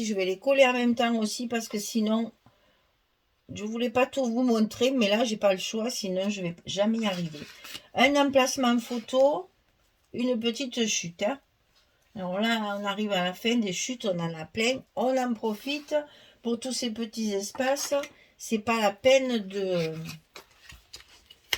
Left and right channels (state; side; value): identical; both; correlation 1.00